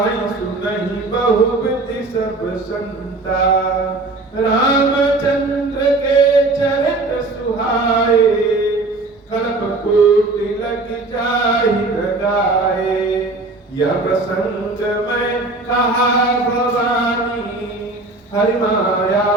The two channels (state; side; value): quieter; left; 3.2 dB